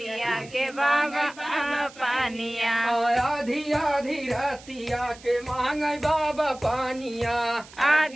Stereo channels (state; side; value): noise; right; hiss, 21 dB below the sound